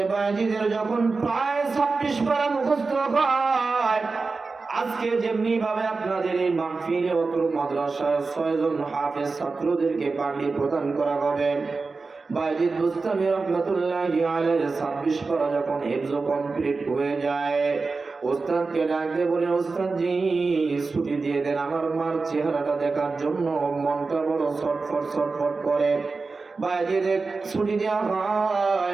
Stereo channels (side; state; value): left; quieter; 4.1 dB